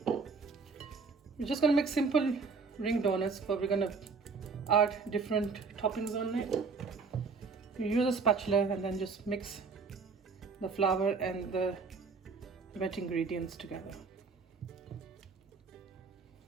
We're just going to make simple ring donuts, but we're going to add different toppings on it. You use a spatula and then just mix the flour and the wet ingredients together.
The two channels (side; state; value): left; quieter; 4.8 dB